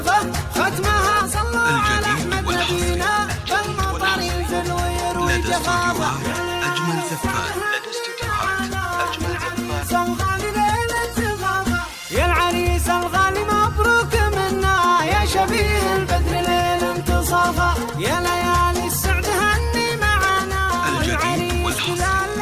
ختمها صلوا على احمد نبينا بالمطر ينزل ويروي جفافه، أجمل زفات. لدى استوديوهات أجمل زفات. الغالي ليل انتظاره، يا العريس الغالي مبروك منا يا شبيه البدر ليل انتصافه، يا ليالي السعد هني معانا الجديد والحصري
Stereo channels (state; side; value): identical; both; correlation 1.00